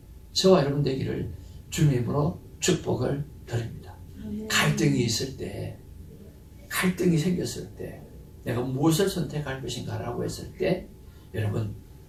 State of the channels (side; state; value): both; identical; correlation 1.00